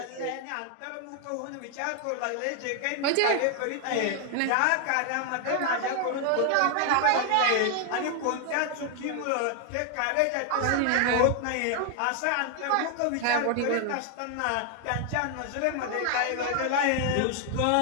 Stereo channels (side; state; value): both; different; correlation 0.00